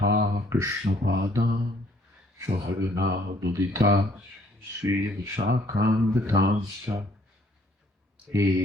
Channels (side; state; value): both; normal; correlation 0.63